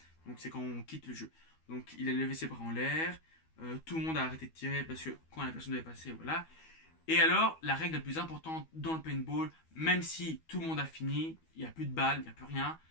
Donc c'est quand on quitte le jeu. Donc il a levé ses bras en l'air, tout le monde a arrêté de tirer parce que quand la personne devait passer, voilà. Et alors, la règle la plus importante dans le paintball, même si tout le monde a fini, il n'y a plus de balles, il n'y a plus rien,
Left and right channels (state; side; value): late; right; 12 ms